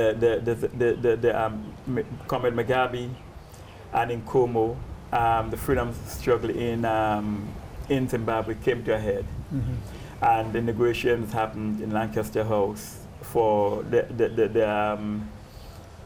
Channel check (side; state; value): both; identical; correlation 1.00